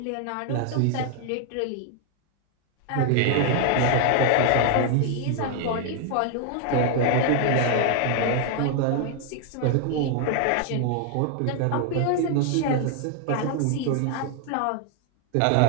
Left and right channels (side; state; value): both; different; correlation 0.00